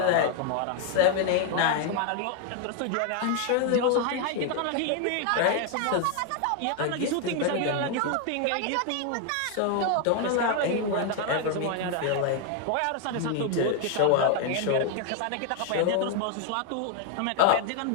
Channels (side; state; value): both; different; correlation 0.00